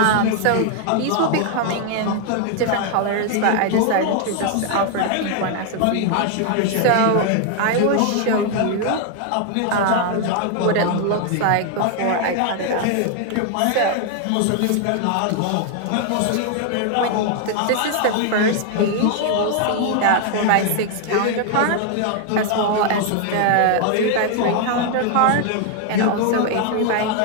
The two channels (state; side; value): different; both; correlation 0.00